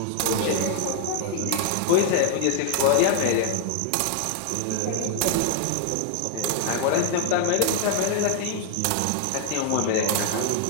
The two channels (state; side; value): different; both; correlation 0.00